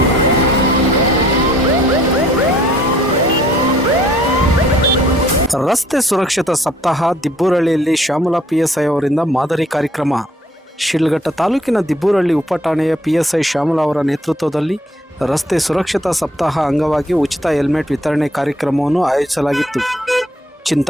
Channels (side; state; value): both; normal; correlation 0.61